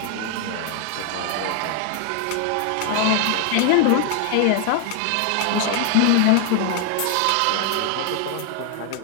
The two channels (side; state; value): both; different; correlation 0.00